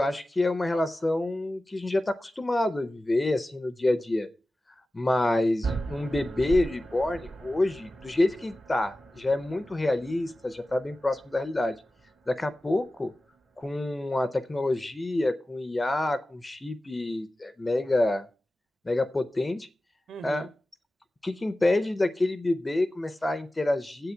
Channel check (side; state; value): both; normal; correlation 0.95